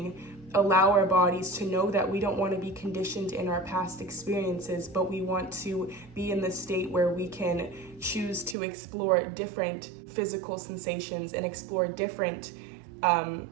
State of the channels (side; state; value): left; drops out; at 8.6 s